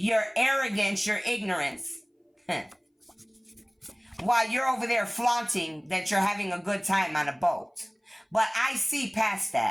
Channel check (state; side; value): identical; both; correlation 1.00